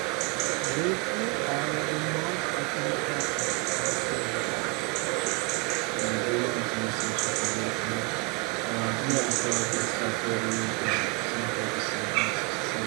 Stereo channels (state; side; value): quieter; left; 26.9 dB